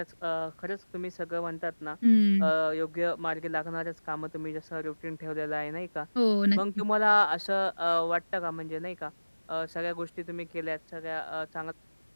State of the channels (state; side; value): inverted; both; correlation -1.00